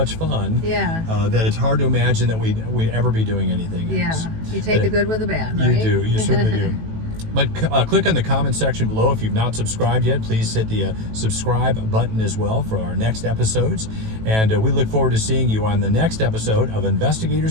fun that it's hard to imagine that we'd ever be doing anything else. You take the good with the bad, right? You do. You certainly do. But click on the comment section below. If you've not subscribed yet, please hit the subscribe button as well for our next episodes. And we look forward to seeing you on the next episode of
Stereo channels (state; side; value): late; left; 18 ms